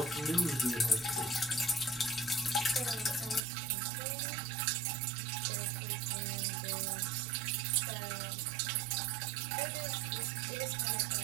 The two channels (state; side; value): drops out; left; at 3.4 s